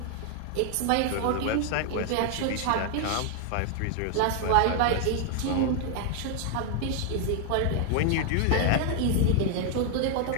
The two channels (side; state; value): both; different; correlation 0.00